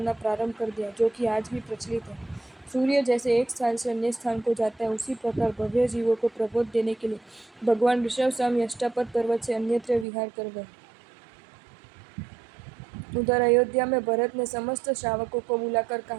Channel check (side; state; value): left; drops out; at 10.1 s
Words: प्रारंभ कर दिया, जो कि आज भी प्रचलित है। सूर्य जैसे एक स्थान से अन्य स्थान को जाता है, उसी प्रकार भव्य जीवों को प्रबोध देने के लिए भगवान ऋषभ स्वामी अष्टापद पर्वत से अन्यत्र विहार कर गए। उधर अयोध्या में भरत ने समस्त श्रावकों को बुलाकर